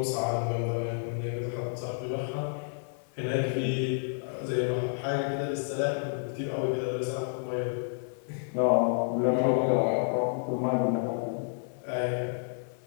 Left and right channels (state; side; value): silent; right; digital silence